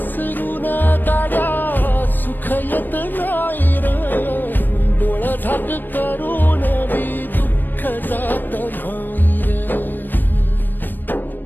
गाड्या सुख येत नाही र, डोळा झाक करून बी दुःख जात नाही र.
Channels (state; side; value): late; right; 0.092 ms